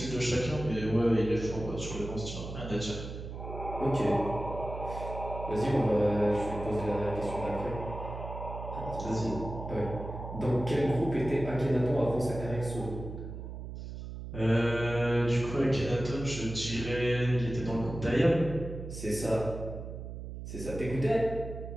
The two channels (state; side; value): noise; right; hum, 9 dB below the sound